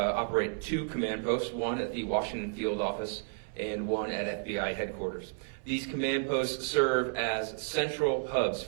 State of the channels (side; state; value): left; silent; 56 dB below the other